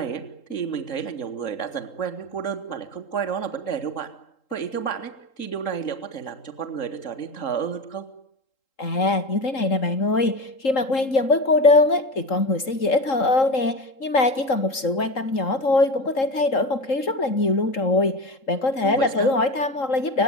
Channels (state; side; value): late; right; 3.8 ms